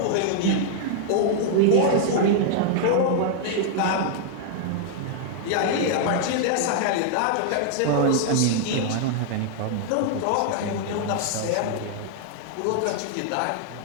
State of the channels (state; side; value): different; both; correlation -0.01